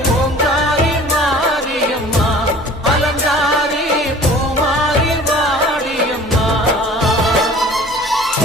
ஓங்காரி மாரியம்மா அலங்காரி பூமாரி வாடியம்மா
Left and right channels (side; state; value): both; normal; correlation 0.47